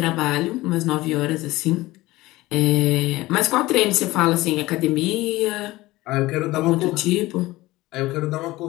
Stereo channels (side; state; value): right; quieter; 18.8 dB